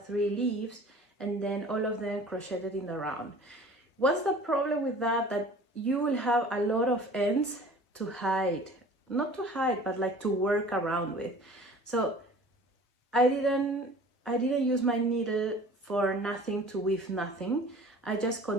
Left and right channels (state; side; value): normal; both; correlation 0.46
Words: 3 leaves, and then all of them crocheted in the round. What's the problem with that? That you will have a lot of ends to hide. Not to hide, but like to work around with. So I didn't use my needle for nothing to weave nothing. I just